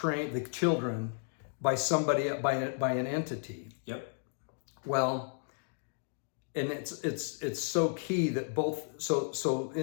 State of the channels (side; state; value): right; silent; 55 dB below the other